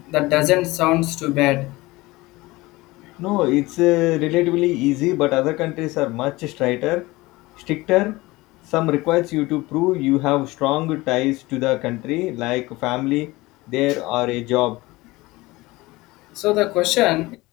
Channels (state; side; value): quieter; right; 20.6 dB